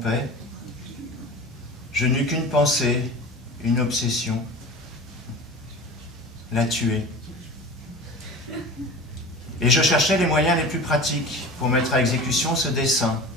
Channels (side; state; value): both; normal; correlation 0.35